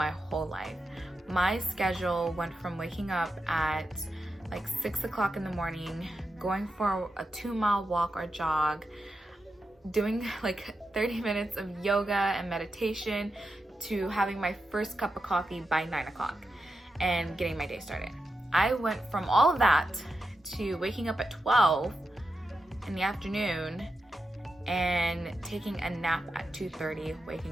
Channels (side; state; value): both; normal; correlation 0.89